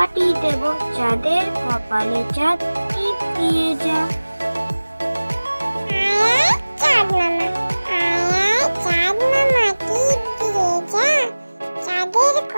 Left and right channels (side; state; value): both; inverted; correlation -1.00